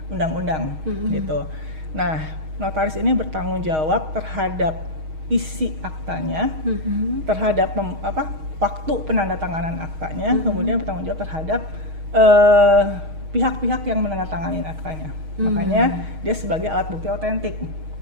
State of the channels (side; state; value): left; late; 6.4 ms